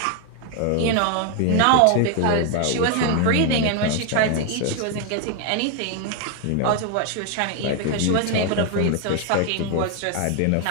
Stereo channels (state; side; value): different; both; correlation 0.00